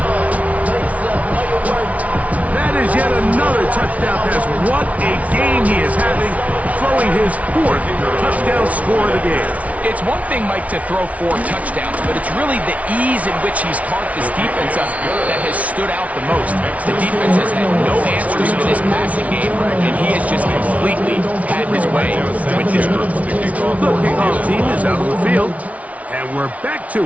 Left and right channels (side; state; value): left; late; 0.067 ms